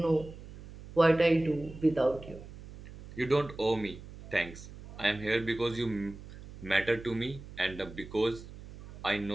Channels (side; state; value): right; noise; hum, 15 dB below the sound